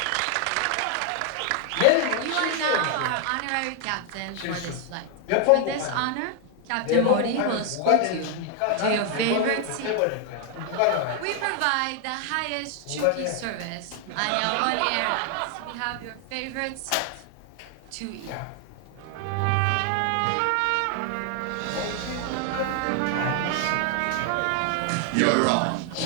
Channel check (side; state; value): both; different; correlation 0.00